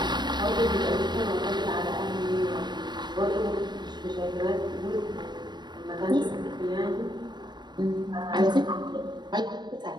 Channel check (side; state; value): left; late; 0.21 ms